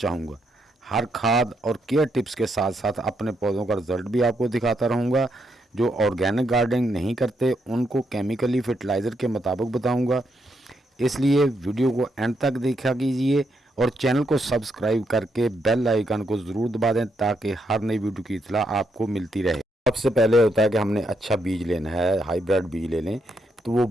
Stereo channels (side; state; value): both; normal; correlation 0.78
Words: हर खाद और केयर टिप्स के साथ साथ अपने पौधों का रिजल्ट भी आपको दिखाता रहूँगा। जो ऑर्गेनिक गार्डनिंग नहीं करते उनको केमिकली फर्टिलाइज़र के मुताबिक बताऊँगा। इसलिए वीडियो को एंड तक देखा कीजिए और चैनल को सब्सक्राइब करके बेल आइकन को ज़रूर दबा दें ताकि हर नई वीडियो की इत्तला आपको मिलती रहे। सबसे पहले होता है कि हमने अच्छा बीज लेना है, हाइब्रिड बीज ले लें तो वो